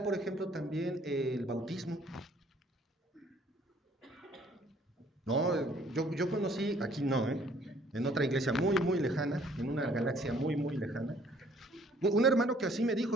por ejemplo, también el bautismo? No, yo conocí, aquí no, en otra iglesia muy lejana, en una galaxia muy lejana, un hermano que así me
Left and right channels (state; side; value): normal; both; correlation 0.60